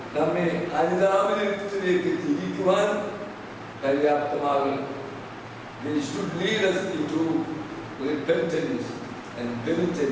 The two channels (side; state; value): both; identical; correlation 1.00